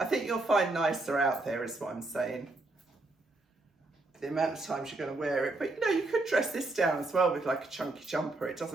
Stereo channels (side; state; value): left; quieter; 3.0 dB